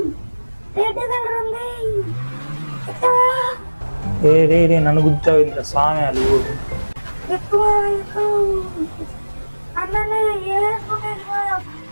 రెడ్ కలర్ ఉంది. ఏ రే రే నన్ను గుర్తావు ఇంత సామ్యాలు. ఎక్కువ అన్ననే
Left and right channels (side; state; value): both; inverted; correlation -1.00